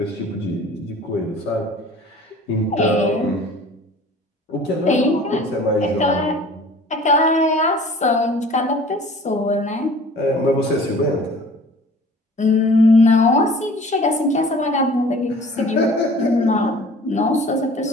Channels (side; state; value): both; normal; correlation 0.47